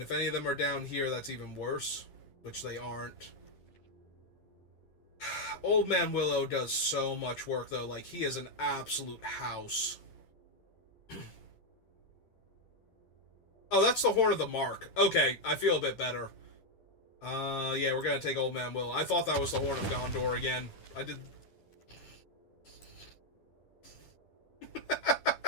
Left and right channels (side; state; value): right; late; 10 ms